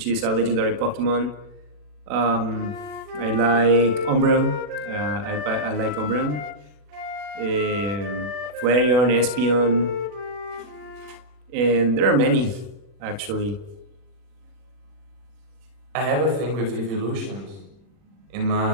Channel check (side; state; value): left; late; 40 ms